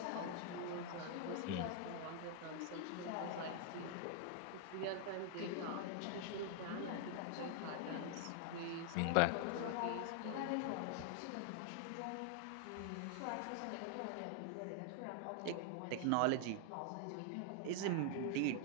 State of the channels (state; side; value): different; both; correlation 0.00